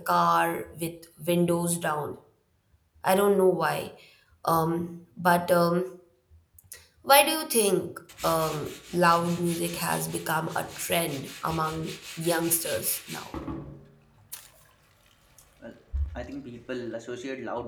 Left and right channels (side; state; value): both; identical; correlation 1.00